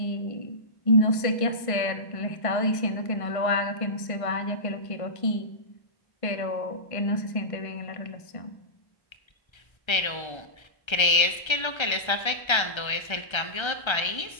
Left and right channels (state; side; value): late; right; 1.3 ms